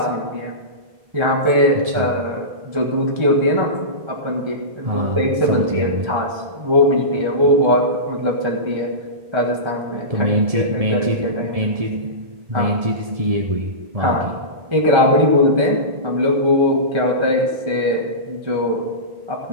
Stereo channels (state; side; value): late; left; 1.7 ms